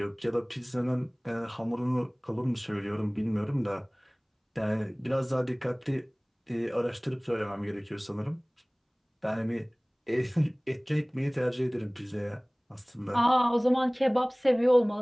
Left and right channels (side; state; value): both; identical; correlation 1.00